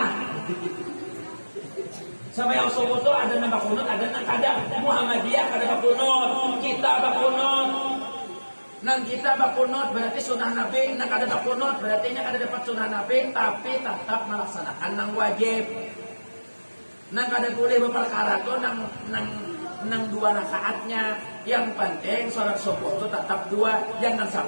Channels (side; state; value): both; inverted; correlation -1.00